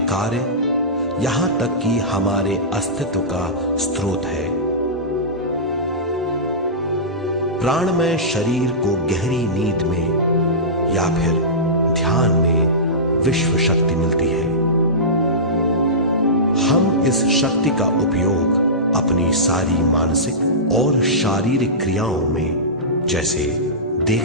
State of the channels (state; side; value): normal; both; correlation -0.18